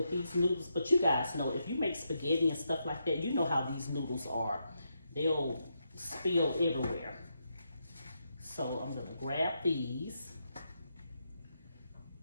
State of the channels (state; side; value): inverted; both; correlation -0.82